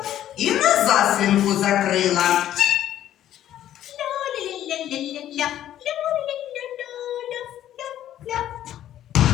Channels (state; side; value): quieter; right; 11.9 dB